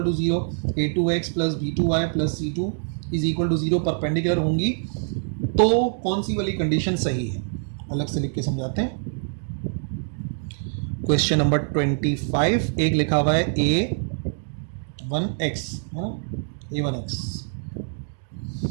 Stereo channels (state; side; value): silent; left; digital silence